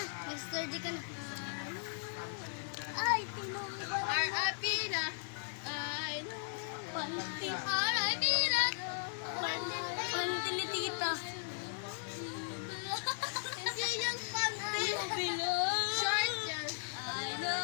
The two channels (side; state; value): right; silent; 53 dB below the other